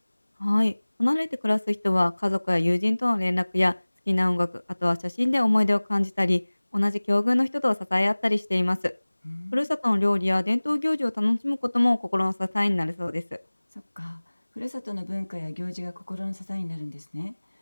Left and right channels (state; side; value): inverted; both; correlation -1.00